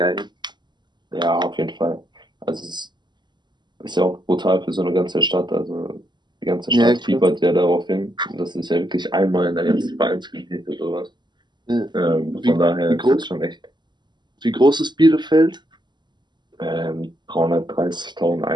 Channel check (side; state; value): left; late; 0.21 ms